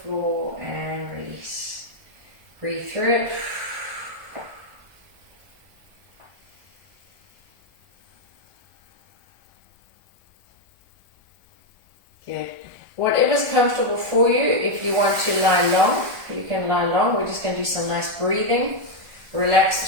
and release. Breathe through it. Good. Whatever's comfortable for you. If you want to lie long, you can lie long. We're just going to do some nice breathing. Relax the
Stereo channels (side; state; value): left; late; 1.4 ms